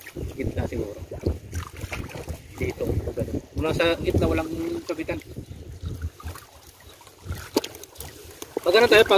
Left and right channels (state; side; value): identical; both; correlation 1.00